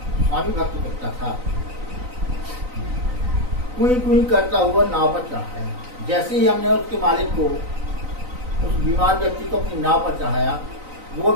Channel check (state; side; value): late; left; 3.9 ms